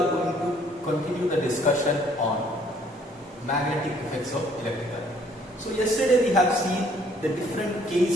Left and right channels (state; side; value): normal; both; correlation 0.61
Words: going to continue the discussion on magnetic effects of electric current. So yesterday we have seen the different